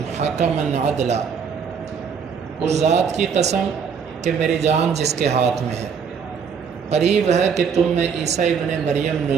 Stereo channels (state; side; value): quieter; left; 6.5 dB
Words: حکما عدلا، اس ذات کی قسم کہ میری جان جس کے ہاتھ میں ہے، قریب ہے کہ تم میں عیسیٰ ابن مریم